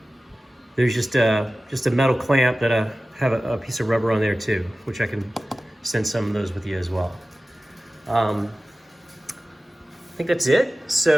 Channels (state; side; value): normal; both; correlation 0.96